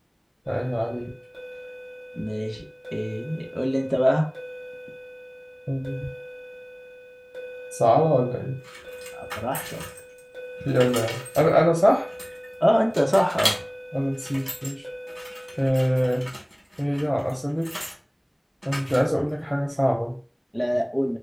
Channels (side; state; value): both; identical; correlation 1.00